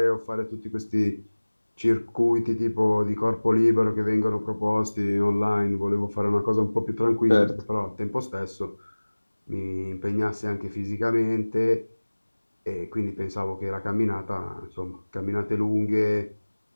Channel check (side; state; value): both; inverted; correlation -1.00